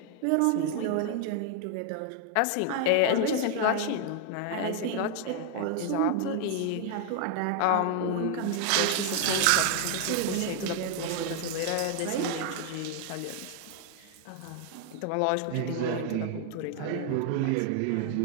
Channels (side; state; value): both; different; correlation 0.00